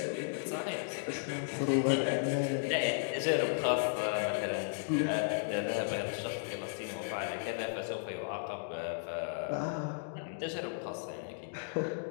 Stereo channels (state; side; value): silent; right; digital silence